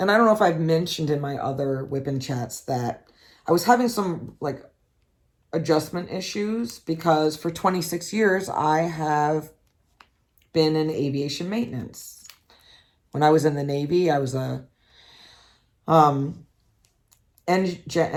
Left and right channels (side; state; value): both; identical; correlation 1.00